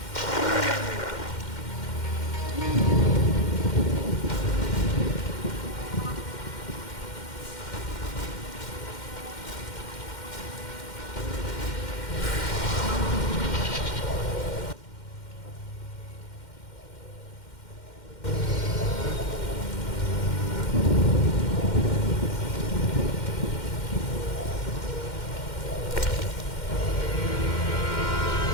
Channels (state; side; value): late; right; 2.1 ms